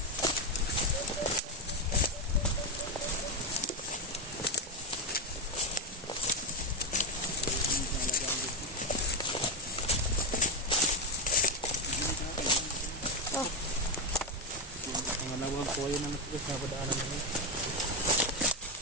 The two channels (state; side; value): normal; both; correlation 0.08